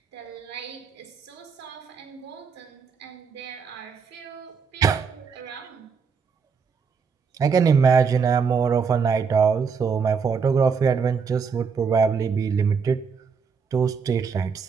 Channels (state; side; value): quieter; left; 5.8 dB